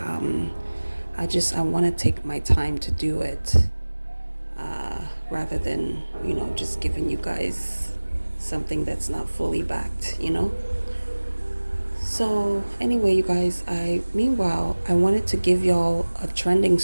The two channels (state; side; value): inverted; both; correlation -1.00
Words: want to take my time to do it rather than, just giving you guys something that's not fully backed, So anyway, you guys, meanwhile, I wanted to give y'all a trending